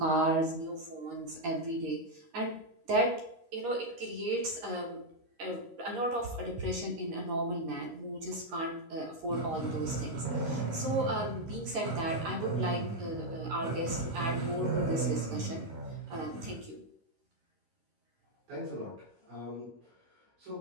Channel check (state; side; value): late; left; 12 ms